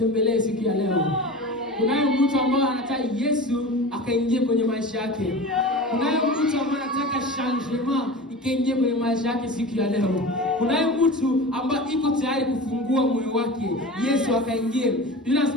siku ya leo. Kunaye mtu ambaye anataka Yesu akaingie kwenye maisha yake. Kunaye mtu ambaye anataka changement ikaingie kwenye maisha yake siku ya leo. Kunaye mtu ambaye iko tayari kufungua moyo wake, Yesu akaingie. Biblia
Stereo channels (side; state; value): both; normal; correlation 0.33